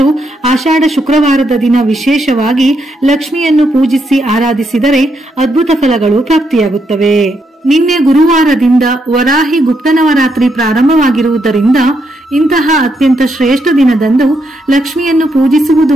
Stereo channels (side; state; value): both; normal; correlation 0.79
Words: ಆಷಾಢ ಶುಕ್ರವಾರದ ದಿನ ವಿಶೇಷವಾಗಿ ಲಕ್ಷ್ಮಿಯನ್ನು ಪೂಜಿಸಿ ಆರಾಧಿಸಿದರೆ ಅದ್ಭುತ ಫಲಗಳು ಪ್ರಾಪ್ತಿಯಾಗುತ್ತವೆ. ನಿನ್ನೆ ಗುರುವಾರದಿಂದ ವರಾಹಿ ಗುಪ್ತ ನವರಾತ್ರಿ ಪ್ರಾರಂಭವಾಗಿರುವುದರಿಂದ ಇಂತಹ ಅತ್ಯಂತ ಶ್ರೇಷ್ಠ ದಿನದಂದು ಲಕ್ಷ್ಮಿಯನ್ನು ಪೂಜಿಸುವುದು